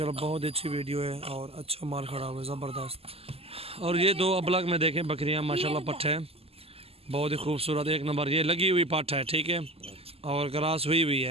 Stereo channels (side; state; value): left; late; 0.29 ms